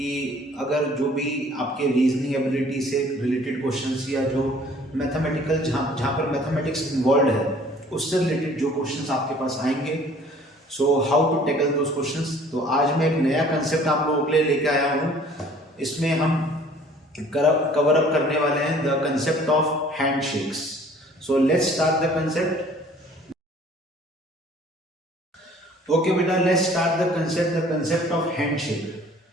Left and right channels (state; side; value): normal; both; correlation 0.53